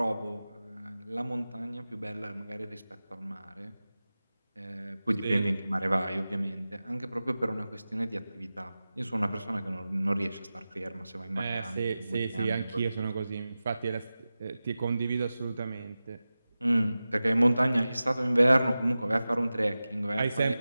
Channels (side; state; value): both; inverted; correlation -0.95